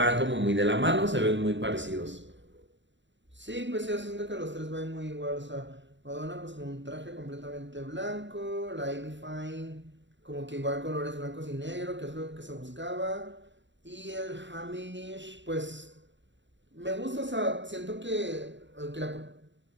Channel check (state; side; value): late; left; 0.53 ms